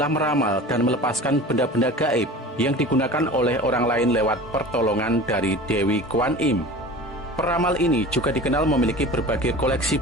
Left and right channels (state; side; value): normal; both; correlation 0.37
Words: meramal dan melepaskan benda-benda gaib yang digunakan oleh orang lain lewat pertolongan dari Dewi Kuan Im. Peramal ini juga dikenal memiliki berbagai koleksi